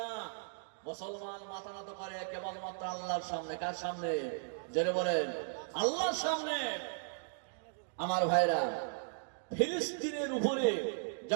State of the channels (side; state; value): left; silent; digital silence